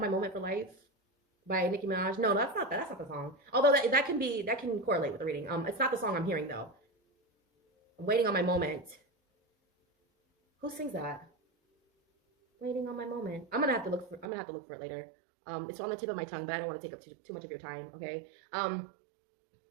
My Moment for Life by Nicki Minaj. No, that's not the song. Although that can correlate with the reading. It's not the song I'm hearing though. I'm waiting on my moment. Who sings that? Waiting on my moment. I'm gonna have to look for it later. It's on the tip of my tongue, but I don't want to take up too much of your time. Okay.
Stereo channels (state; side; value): drops out; left; at 14.2 s